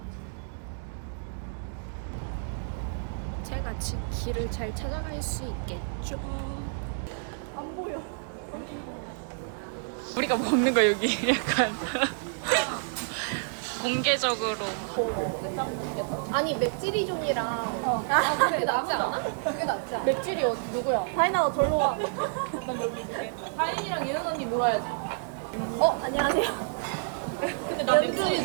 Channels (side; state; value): left; silent; 58 dB below the other